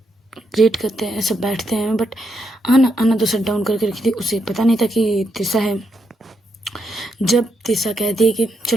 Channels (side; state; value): both; normal; correlation 0.80